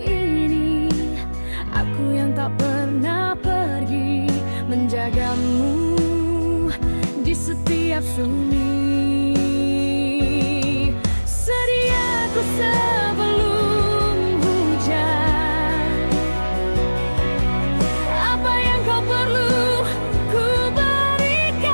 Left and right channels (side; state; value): both; inverted; correlation -1.00